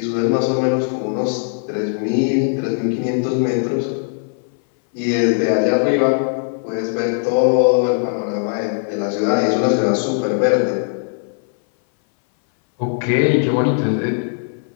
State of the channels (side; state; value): right; silent; 61 dB below the other